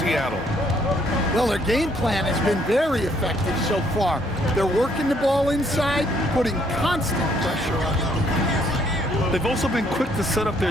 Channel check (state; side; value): normal; both; correlation 0.67